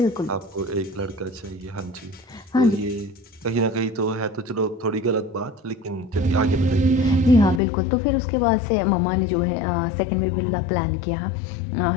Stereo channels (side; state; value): right; drops out; at 7.6 s